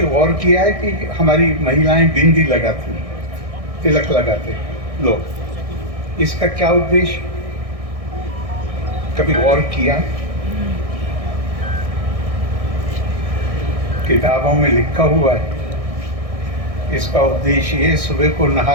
गौर किया है कि हमारी महिलाएं बिंदी लगाती, तिलक लगाते लोग, इसका क्या उद्देश्य? कभी गौर किया? किताबों में लिखा हुआ है। इसका उद्देश्य ये, सुबह को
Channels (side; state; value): left; late; 1.6 ms